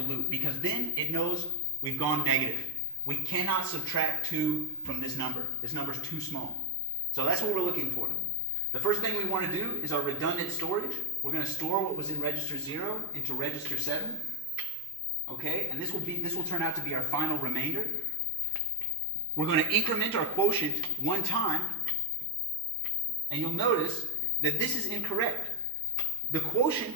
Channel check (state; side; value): normal; both; correlation 0.14